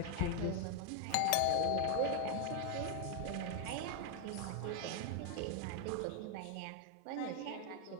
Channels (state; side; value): different; both; correlation 0.00